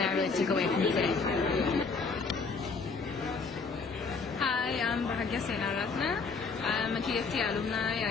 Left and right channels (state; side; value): quieter; right; 4.7 dB